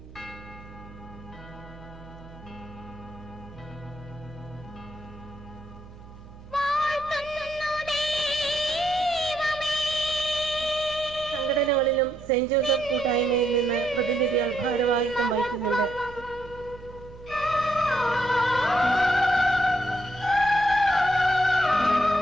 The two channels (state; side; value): noise; right; hum, 18 dB below the sound